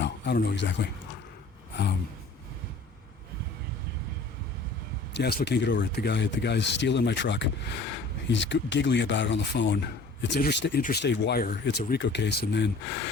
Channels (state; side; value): quieter; right; 3.5 dB